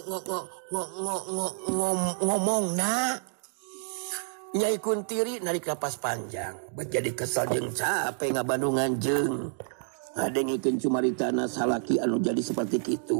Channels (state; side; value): silent; left; 59 dB below the other